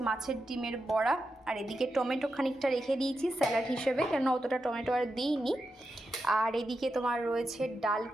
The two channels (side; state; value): both; normal; correlation 0.88